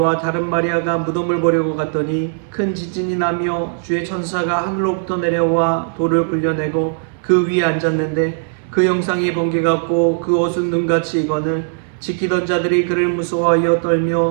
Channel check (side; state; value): left; silent; 67 dB below the other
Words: 다른 마리아가 무덤을 보려고 갔더니 큰 지진이 나며 주의 천사가 하늘로부터 내려와 돌을 굴려내고 그 위에 앉았는데 그 형상이 번개 같고 그 옷은 눈같이 익거늘 지키던 자들이 그를 무서워하여